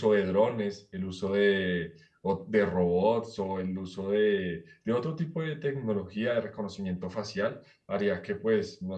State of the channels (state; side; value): identical; both; correlation 1.00